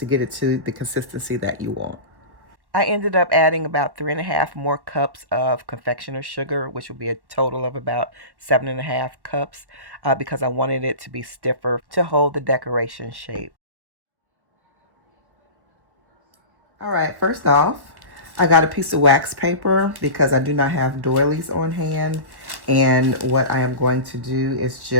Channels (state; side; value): late; left; 1.2 ms